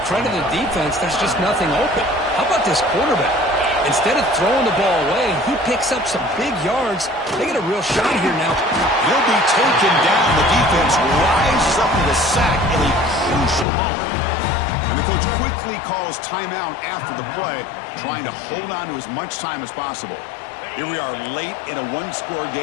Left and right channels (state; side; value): drops out; right; at 13.7 s